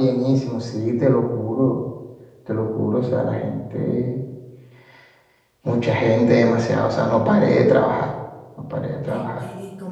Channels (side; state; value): both; identical; correlation 1.00